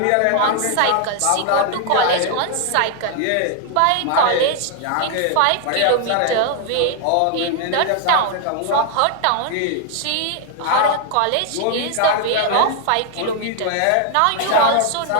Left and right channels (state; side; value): different; both; correlation 0.00